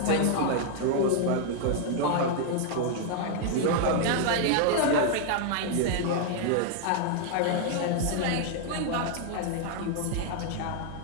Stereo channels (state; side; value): different; both; correlation 0.00